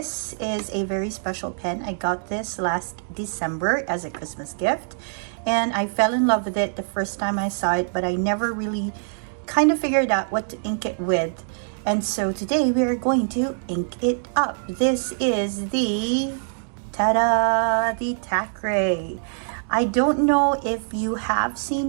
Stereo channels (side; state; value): left; silent; digital silence